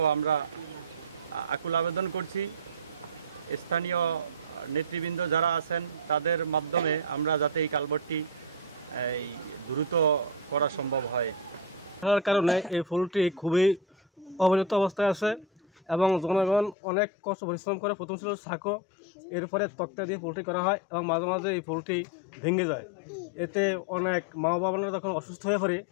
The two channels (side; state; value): right; drops out; at 16.8 s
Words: আমরা আকুল আবেদন করছি। স্থানীয় নেতৃবৃন্দ যারা আছেন তাদের মাধ্যমে আমরা যাতে এই কালভার্টটি দ্রুত করা সম্ভব হয়। তার কারণে এই পুলটি খুবই অবহেলিত অবস্থায় আছে এবং জনগণ অনেক কষ্ট পরিশ্রম করে। প্রথম ছিল সাঁকো, এরপরে তক্তা দিয়ে পুলটি করা হয় এবং মাঝে মাঝে এই পুলটি ভেঙে যায়। এতে অনেক মা বাবারা যখন অসুস্থ হয়ে পড়ে